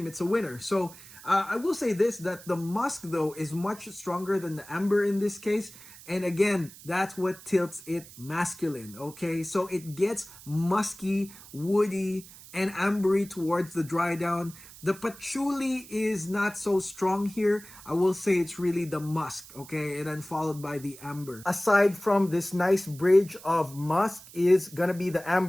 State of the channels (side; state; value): right; noise; hiss, 19 dB below the sound